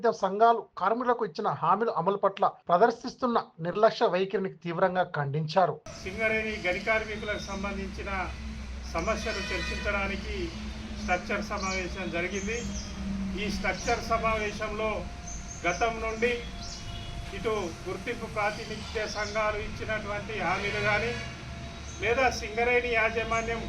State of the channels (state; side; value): identical; both; correlation 1.00